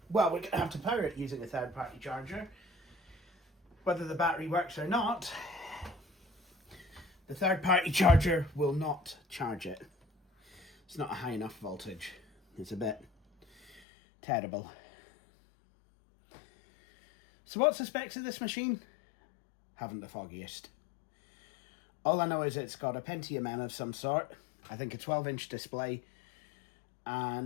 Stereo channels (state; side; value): drops out; right; at 13.8 s